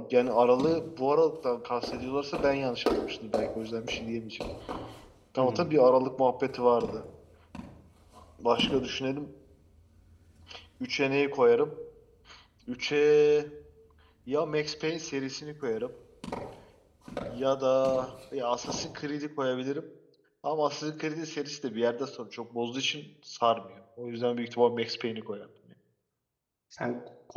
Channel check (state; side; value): identical; both; correlation 1.00